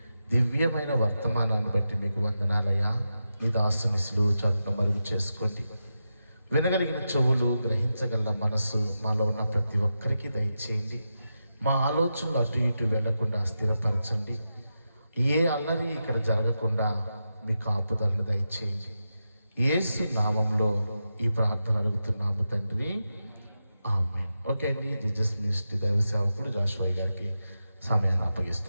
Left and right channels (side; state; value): both; inverted; correlation -0.89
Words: దివ్యమైన వర్తమానాన్ని బట్టి మీకు వందనాలయ్యా. నీ దాసుని సులువు చాటును మరుగు చేసుకోండి. వినగలిగిన చెవులు, గ్రహించగల మనసు మాలో ఉన్న ప్రతి ఒక్కరికి దయచేయండి. మా ఆలోచనలు అటు ఇటు వెళ్లకుండా స్థిరపరచండి. ఏ అల్లరి ఇక్కడ జరగకుండా మీ కాపుదలను దయచేయండి. యేసు నామంలో ఈ ప్రార్థన అడుగుతున్నాము తండ్రి, ఆమేన్. ఓకే అండి, జీసస్ మినిస్ట్రీ దైవ సేవకుడు జాషువా గారికి సమయాన్ని